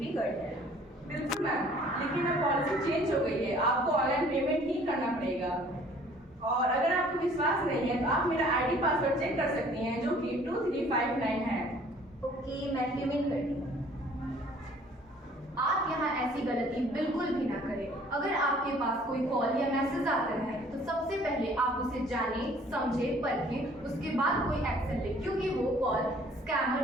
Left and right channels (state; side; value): normal; both; correlation 0.55